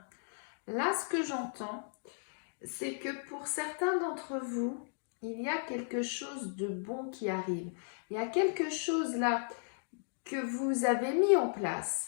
là, ce que j'entends, c'est que pour certains d'entre vous, il y a quelque chose de bon qui arrive. Il y a quelque chose là que vous avez mis en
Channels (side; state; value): right; silent; digital silence